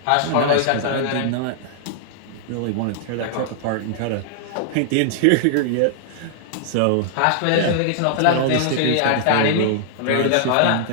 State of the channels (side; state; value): both; different; correlation -0.01